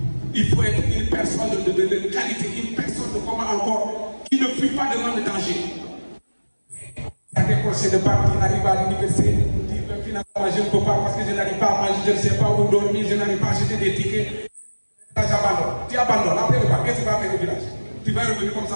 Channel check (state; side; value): inverted; both; correlation -1.00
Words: Il faut être une personne de qualité, une personne de comment encore, qui ne fuit pas devant le danger. Il y a des procès de bac qui n'arrivent à l'université, qui finalement je ne peux pas parce que je n'arrive pas à manger, je ne sais pas où dormir, je n'arrive pas à acheter des tickets. Là, j'abandonne. Tu abandonnes. Après le bac, qu'est-ce que tu vas faire au village? Tu vas revenir comme ça